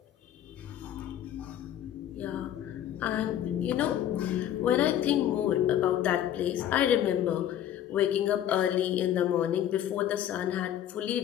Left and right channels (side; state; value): right; quieter; 11.1 dB